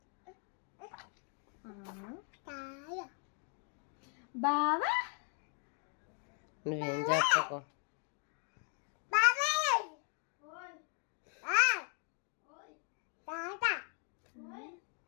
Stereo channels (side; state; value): right; quieter; 39.1 dB